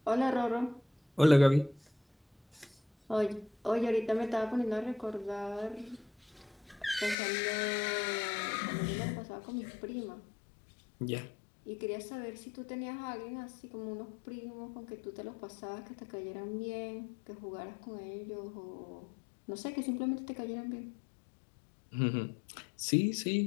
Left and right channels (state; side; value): drops out; right; at 7.2 s